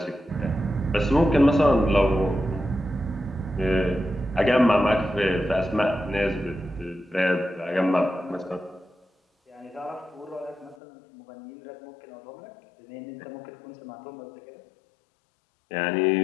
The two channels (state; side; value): drops out; right; at 10.8 s